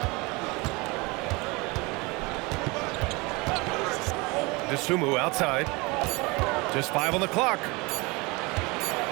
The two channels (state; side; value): quieter; left; 25.6 dB